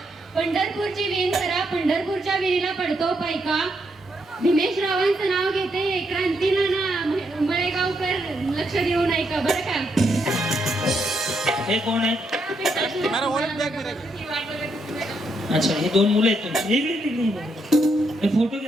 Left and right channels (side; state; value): both; normal; correlation 0.78